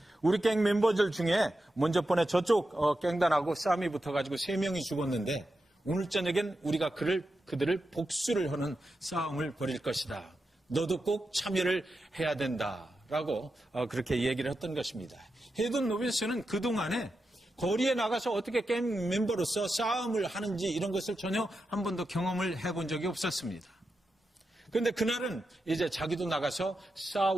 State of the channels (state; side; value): normal; both; correlation 0.89